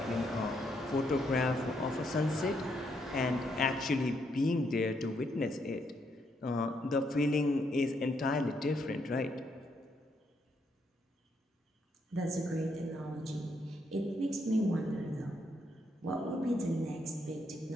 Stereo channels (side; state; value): both; normal; correlation 0.75